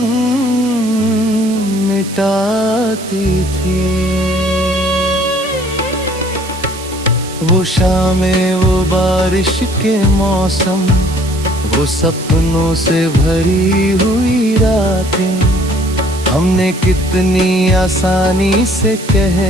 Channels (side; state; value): right; noise; hiss, 14 dB below the sound